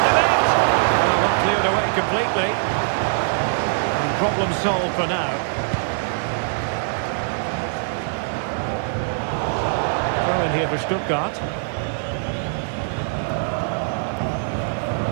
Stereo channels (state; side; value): silent; left; digital silence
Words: the net? Well, not cleared away completely. And problem solved for now. Throw in here for Stuttgart.